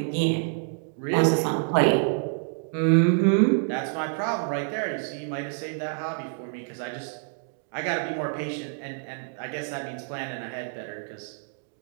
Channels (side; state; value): left; silent; 60 dB below the other